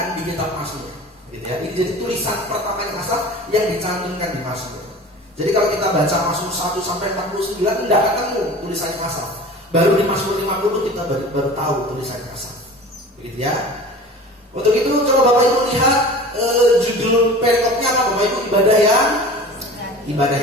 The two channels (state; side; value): normal; both; correlation 0.39